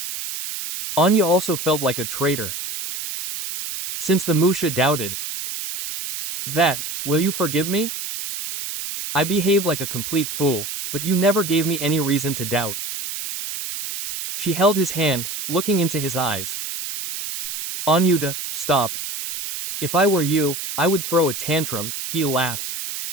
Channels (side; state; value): right; noise; hiss, 6 dB below the sound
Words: Anya also felt like a traitor, since the Musha doubted. "That, will you forgive me? I behaved like a complete fool, but you never gave me any reason to doubt." She held his hand, looking into his eyes. "Anyuta, stop. If I were you, I would throw a tantrum," he laughed.